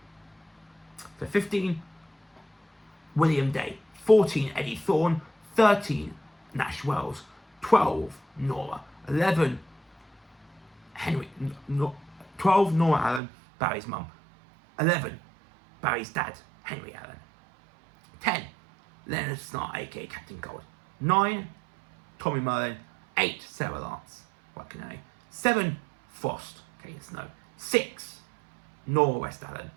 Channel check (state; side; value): drops out; left; at 13.2 s